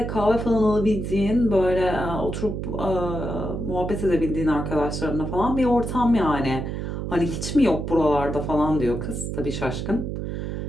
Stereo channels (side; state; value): right; noise; hum, 4 dB below the sound